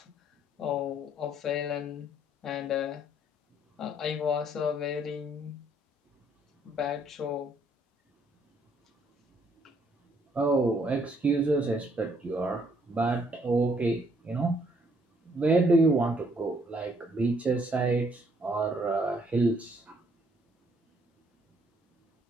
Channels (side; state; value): both; normal; correlation 0.67